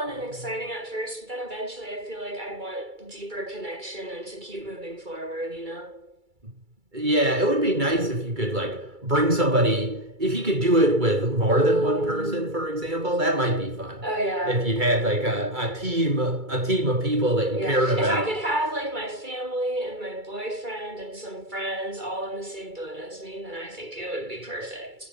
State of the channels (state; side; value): late; left; 2.3 ms